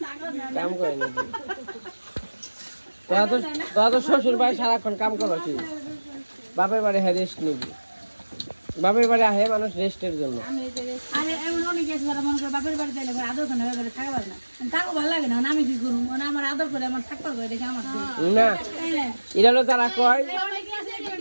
কাম করে নাকি তোরা তো শ্বশুর বাড়ি সারাক্ষণ কাম করছিস বাপের বাড়ি হ্যাঁ রেস্ট নিবি বাপের বাড়ি আহে মানুষ রেস্টের জন্য আরে এমন অনেক আছে যারা মনে করে বাপের বাড়ি যাইলে আদর করে বাপের থাকা পারে না তাকে ভালো লাগে না আমি কি করুম মানে আমার আদর করে আমার থাকবার করে দেখে আমার না এটা হলো তারা কয়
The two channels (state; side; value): inverted; both; correlation -1.00